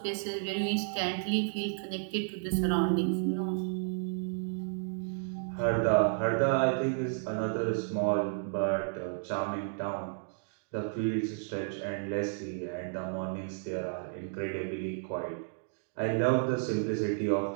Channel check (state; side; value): silent; left; digital silence